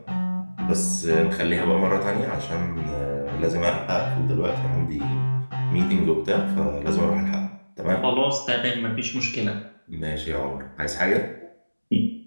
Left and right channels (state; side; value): inverted; both; correlation -1.00